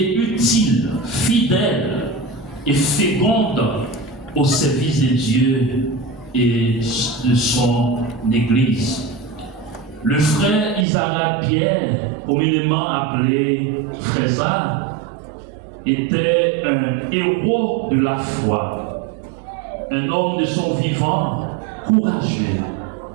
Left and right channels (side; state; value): left; drops out; at 10.9 s